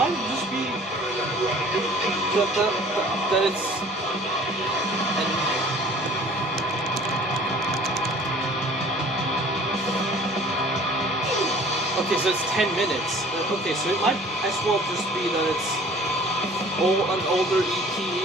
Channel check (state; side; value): normal; both; correlation 0.50